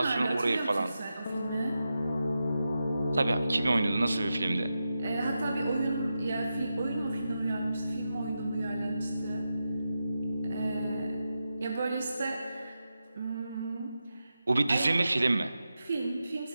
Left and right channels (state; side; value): inverted; both; correlation -0.89